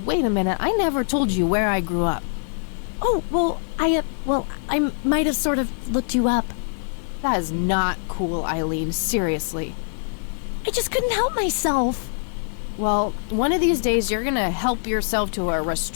wait a minute. I never told you where I grew up. Oh, well, I might have sort of looked you up. That is not cool, Eileen. Seriously. I just couldn't help myself. Well, one of these days you're gonna help yourself to a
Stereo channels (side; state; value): right; silent; digital silence